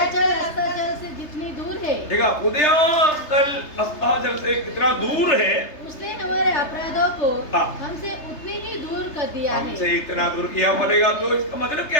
अस्ताचल से जितनी दूर है देखा उदयास्ताचल अस्ताचल से कितना दूर है, उसने हमारे अपराधों को हाँ। हमसे उतनी ही दूर कर दिया है। हमसे इतना दूर किया बोलेगा तो इसका मतलब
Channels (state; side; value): late; right; 3.3 ms